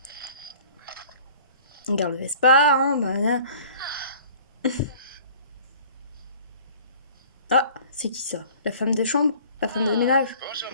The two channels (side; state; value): both; inverted; correlation -0.49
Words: Regarde le Vespa, hein, bah, Ah, c'est qui ça? La femme de chambre? La femme de ménage? Bonjour,